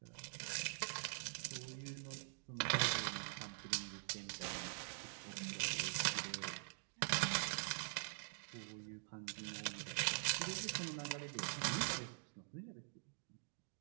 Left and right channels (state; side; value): silent; left; digital silence